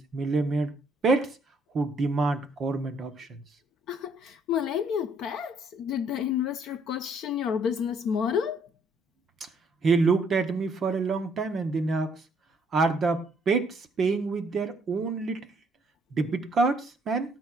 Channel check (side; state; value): both; normal; correlation 0.66